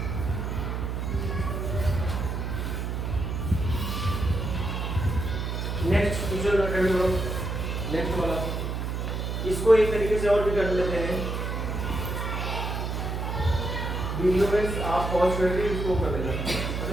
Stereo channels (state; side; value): noise; right; hum, 2 dB below the sound